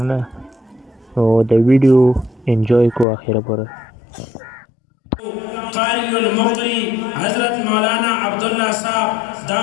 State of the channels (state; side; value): drops out; right; at 3.1 s